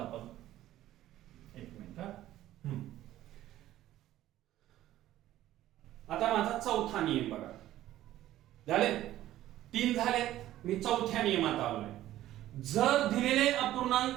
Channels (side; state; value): left; quieter; 13.9 dB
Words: एक मिनिट हा. आता माझा चौथा नियम बघा. झाले 3 झाले. मी चौथ्या नियमात आलोय. जर दिलेले